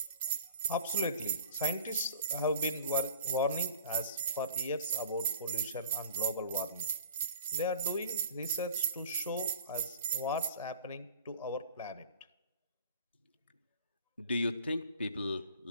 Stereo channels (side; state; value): both; inverted; correlation -0.43